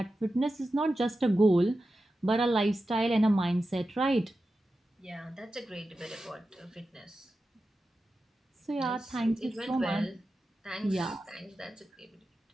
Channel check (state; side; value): normal; both; correlation 0.92